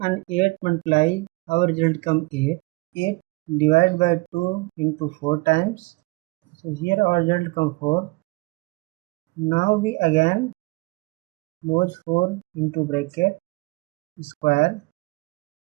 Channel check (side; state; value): left; quieter; 25.0 dB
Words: and 8 multiply, our result come 8. 8 divided by 2 into 4 times. So here our result come 4. Now we again close 4 into bracket square.